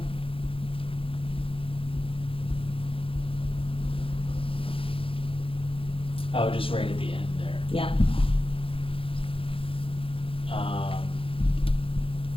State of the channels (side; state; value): right; late; 0.26 ms